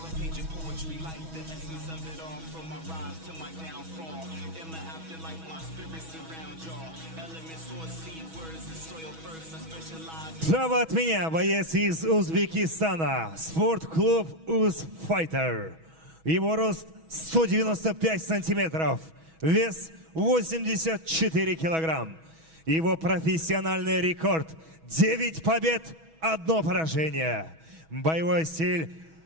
a page of poetry like the essence of it all. From my rise to my downfall, in the afterlife my spirit surround y'all. Elements source seed words and soil first. I specialize. Справа от меня боец из Узбекистана, спортклуб Узфайтер. Его рост 195 сантиметров, вес 84 килограмм. Его профессиональный рекорд 9 побед, 1 поражение. Боевой стиль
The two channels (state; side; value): late; left; 6.2 ms